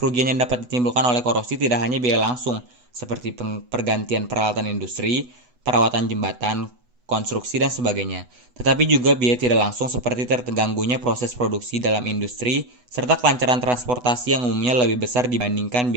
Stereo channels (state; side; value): late; left; 8.1 ms